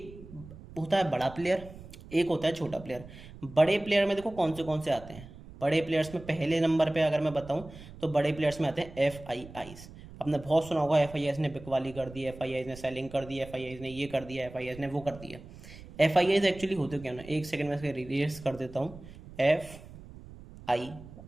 होता है बड़ा प्लेयर, एक होता है छोटा प्लेयर। बड़े प्लेयर में देखो कौन से आते हैं। बड़े प्लेयर्स में पहले नंबर पे अगर मैं बताऊं तो बड़े प्लेयर्स में आते हैं एफ आई आईज। आपने बहुत सुना होगा, एफ आई आईज ने बिकवाली कर दी, एफ आई आईज ने सेलिंग कर दी, एफ आई आईज ने ये कर दिया, एफ आई आईज ने वो कर दिया। एफ आई आईज एक्चुअली होते क्या ना, एक सेकंड में इसके रिलीज कर देता हूँ। F I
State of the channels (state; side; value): noise; right; rumble, 17 dB below the sound